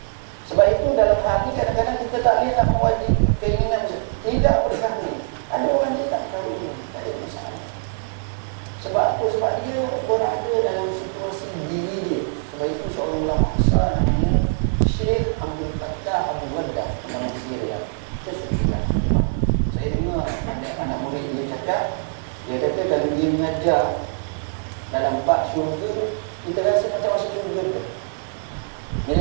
sebab itu dalam hati kadang-kadang kita tak boleh nak mewajib keinginan tidak berkahwin. Ada orang dia tak kahwin, tak ada masalah. Sebab apa? Sebab dia berada dalam situasi diri dia. Sebab itu seorang ulama besar namanya Syekh Abdul Fattah Abu Waddah dalam Syria. Kita sudah saya dengar anak murid dia cakap, dia kata kalau dia mengajar dalam bab syurga, kita rasa macam masuk syurga tu.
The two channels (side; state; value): left; silent; digital silence